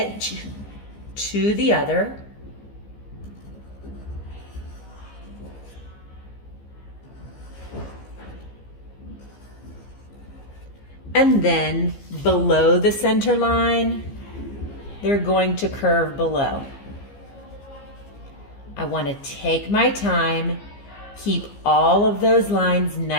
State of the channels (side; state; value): right; late; 15 ms